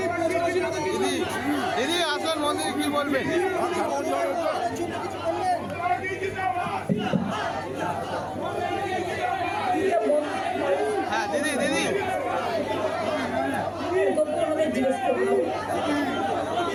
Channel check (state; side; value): identical; both; correlation 1.00